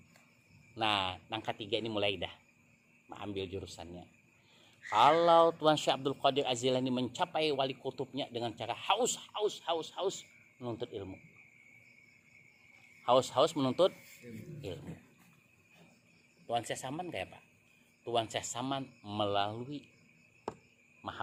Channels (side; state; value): both; identical; correlation 1.00